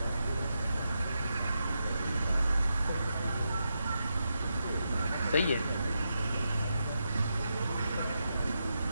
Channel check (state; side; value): inverted; both; correlation -0.86